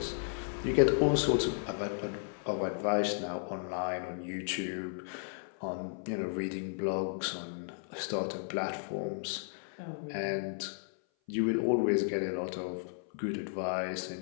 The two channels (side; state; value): right; silent; 55 dB below the other